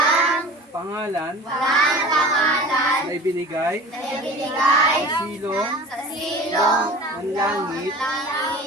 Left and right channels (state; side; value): normal; both; correlation 0.40